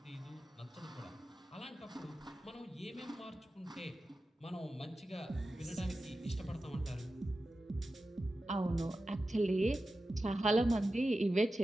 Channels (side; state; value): both; normal; correlation 0.93